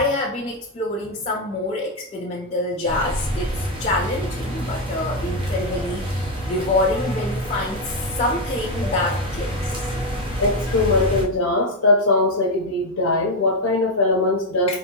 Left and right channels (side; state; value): both; normal; correlation 0.05